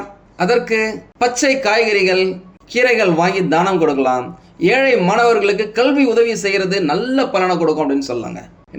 அதற்கு பச்சை காய்கறிகள் கீரைகள் வாங்கி தானம் கொடுக்கலாம். ஏழை மாணவர்களுக்கு கல்வி உதவி செய்கிறது நல்ல பலனை கொடுக்கும் அப்படின்னு சொல்லாங்க.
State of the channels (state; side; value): identical; both; correlation 1.00